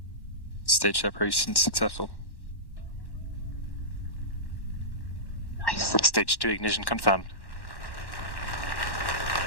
Stage separation successful. Nice. Stage 2 ignition confirmed.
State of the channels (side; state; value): right; late; 1.1 ms